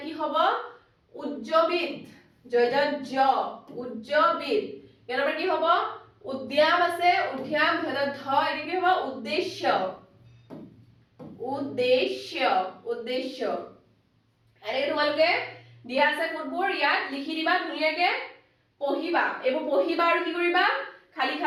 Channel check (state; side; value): identical; both; correlation 1.00